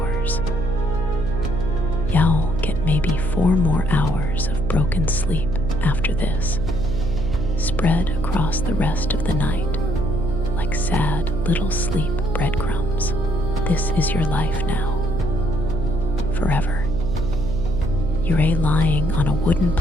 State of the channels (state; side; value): noise; right; hum, 4 dB below the sound